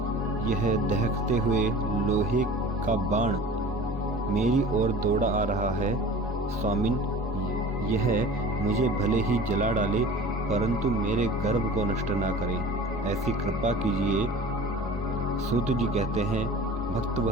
यह दहकते हुए लोहे का बाण मेरी ओर दौड़ा आ रहा है। स्वामिन, यह मुझे भले ही जला डाले परंतु मेरे गर्भ को नष्ट ना करे, ऐसी कृपा कीजिए। सूत जी कहते हैं,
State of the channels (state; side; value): normal; both; correlation 0.41